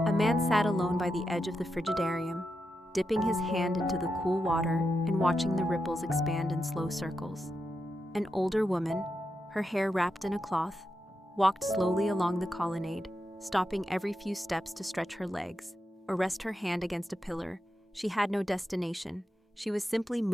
man sat alone by the edge of the frigidarium, dipping his hand into the cool water and watching the ripples expand in slow circles. An older woman, her hair wrapped in a cloth, walked slowly along the colonnade, stopping every few steps to stretch her legs or rest her hand against a pillar. She had no destination. She was simply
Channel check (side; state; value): both; normal; correlation 0.87